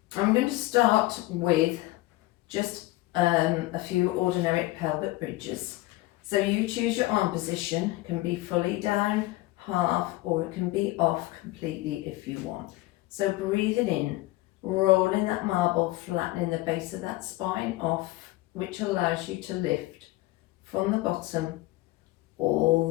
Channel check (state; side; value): quieter; right; 18.8 dB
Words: I'm going to start with just a few ordinary pelvic bridges. So you choose your arm position. It can be fully down, half, or it can be off completely if you want. So breathing in, rolling that marble, flattening the base of that spine off, which allows you to lift from the bottom